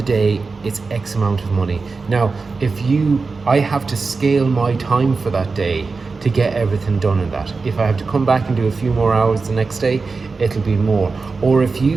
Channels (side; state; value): left; quieter; 4.3 dB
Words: day, it's X amount of money. Now, I have to scale my time for that day to get everything done in that. If I have to come back and do a few more hours the next day, it'll be more. Or if